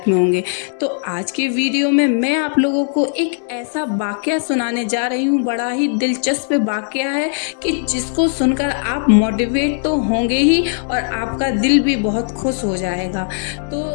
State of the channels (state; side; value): silent; right; 62 dB below the other